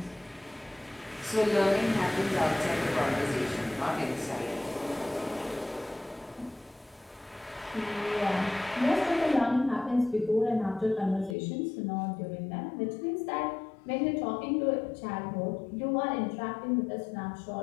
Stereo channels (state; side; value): drops out; right; at 11.4 s